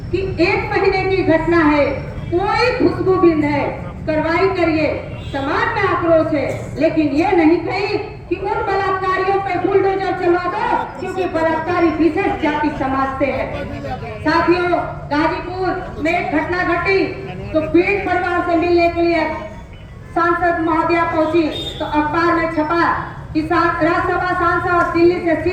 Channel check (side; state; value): both; identical; correlation 1.00